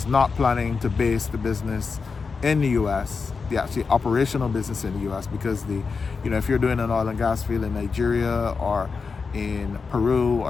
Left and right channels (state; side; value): quieter; right; 4.9 dB